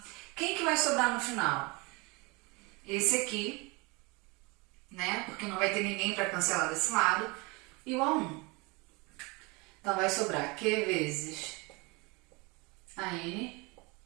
Quem que vai sobrar no final? Esse aqui, né? Porque não vai ter ninguém para cancelar desse lado. E o A1. Então vai sobrar Q vezes AN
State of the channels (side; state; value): left; quieter; 26.9 dB